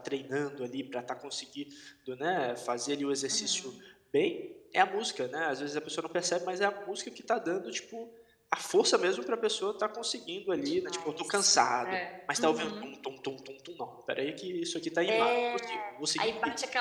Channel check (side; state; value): both; identical; correlation 1.00